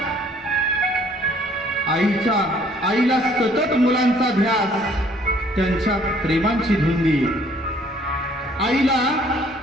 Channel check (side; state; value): both; normal; correlation 0.60